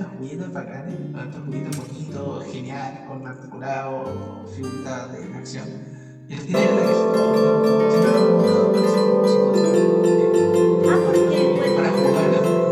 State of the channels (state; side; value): identical; both; correlation 1.00